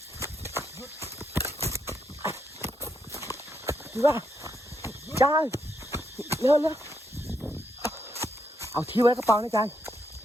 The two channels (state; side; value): normal; both; correlation 0.79